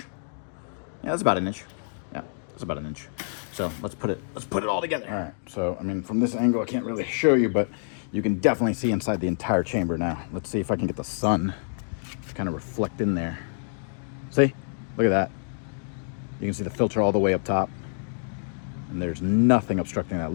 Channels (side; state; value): right; silent; digital silence